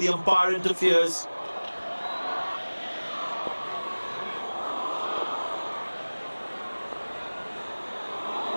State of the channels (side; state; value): both; inverted; correlation -1.00